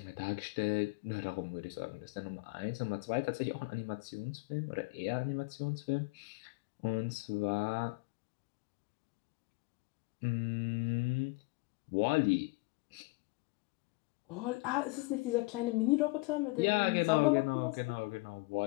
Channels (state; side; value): quieter; right; 25.2 dB